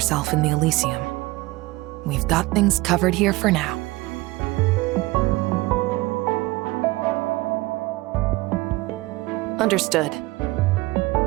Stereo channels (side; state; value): left; quieter; 20.5 dB